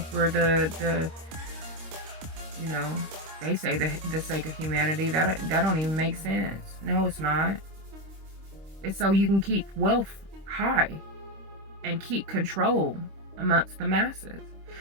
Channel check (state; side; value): late; left; 25 ms